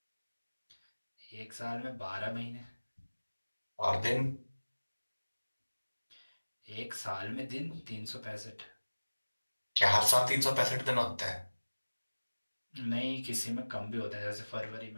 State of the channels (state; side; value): inverted; both; correlation -1.00